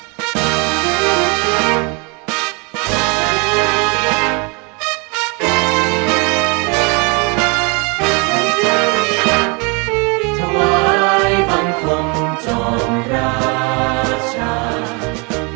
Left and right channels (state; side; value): quieter; left; 31.6 dB